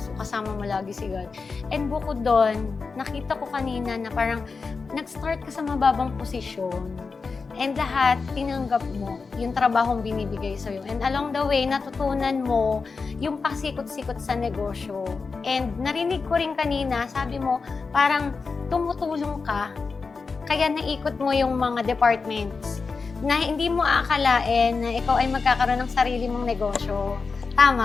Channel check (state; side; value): quieter; right; 4.6 dB